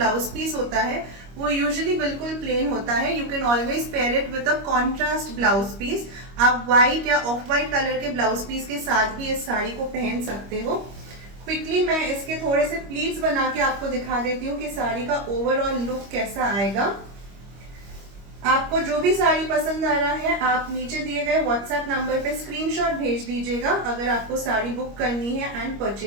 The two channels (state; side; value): late; left; 25 ms